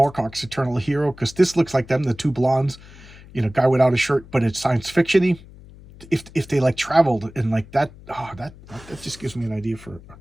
Eternal Hero? Because this looks like them, the two blondes, you know, guy without a shirt, but it's science fiction-y. If they like traveled and like that, that just gives me an idea for a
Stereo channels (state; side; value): noise; left; hum, 20 dB below the sound